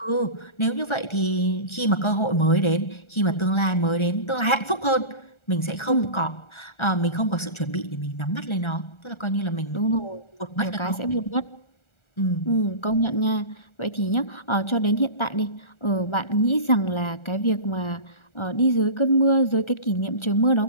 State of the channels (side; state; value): right; late; 1.4 ms